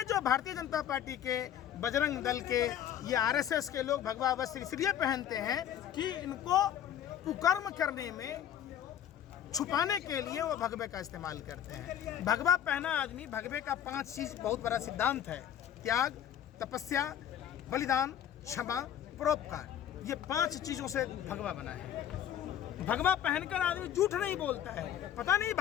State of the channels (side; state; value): right; quieter; 10.2 dB